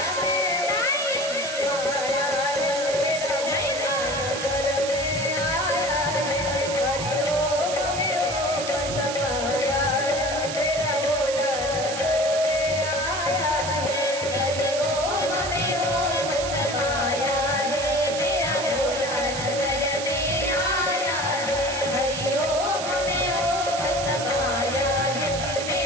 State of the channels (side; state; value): right; noise; hiss, 6 dB below the sound